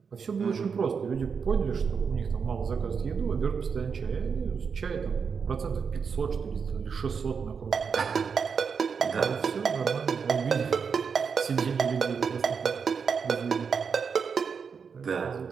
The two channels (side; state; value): left; quieter; 6.0 dB